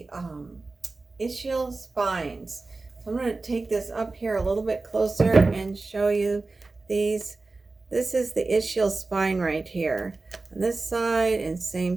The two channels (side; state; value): left; quieter; 3.6 dB